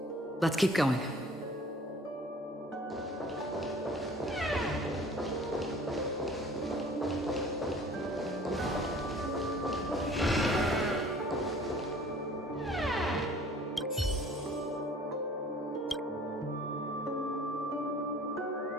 Let's keep going.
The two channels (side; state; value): both; normal; correlation 0.50